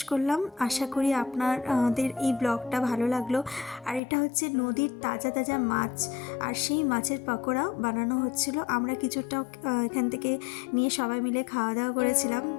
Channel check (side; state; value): right; drops out; at 4.0 s